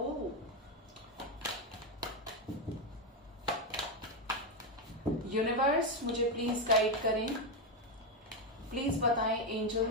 यूनिवर्स मुझे प्लीज गाइड करें, प्लीज बताएं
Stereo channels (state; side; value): normal; both; correlation 0.07